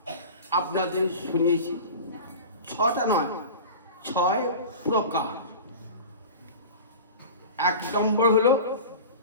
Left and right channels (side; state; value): both; inverted; correlation -0.35